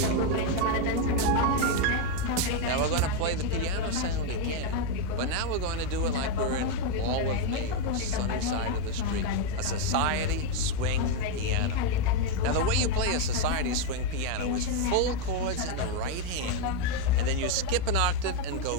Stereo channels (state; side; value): different; both; correlation 0.02